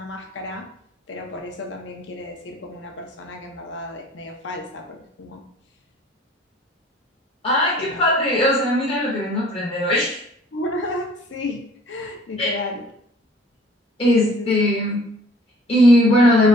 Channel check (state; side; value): normal; both; correlation 0.53